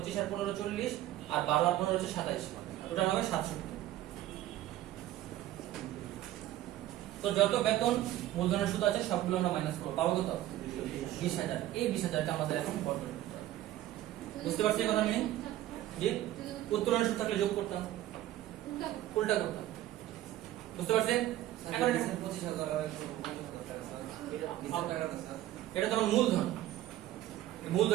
আর 15 40, আর 12 আর 15 হচ্ছে 27, টোটাল হবে 67। তো যত বেতন মূলধনের সুদ আছে সবগুলো আমরা মাইনাস করবো, পাবো কত, 20,000। এই 20,000টা আমাদের এখন বর্তমান করতে হবে। বুঝতে পারছি কথা নেই যে উত্তোলনের সুদ থাকলে যোগ করতাম, উল্টা করতাম। বুঝতে পারছেন? এখন এটা তো আমার মূলধন,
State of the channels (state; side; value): quieter; left; 14.1 dB